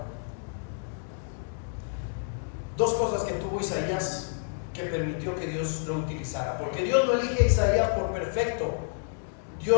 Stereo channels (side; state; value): right; silent; digital silence